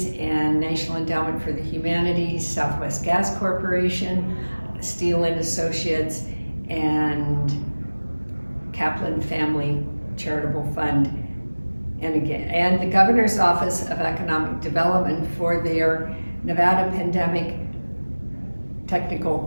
and National Endowment for the Humanities, Southwest Gas Corporation, Steele and Associates, and Kaplan Family Charitable Fund, and the Governor's Office of Economic Development for their Nevada Pandemic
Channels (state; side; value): inverted; both; correlation -1.00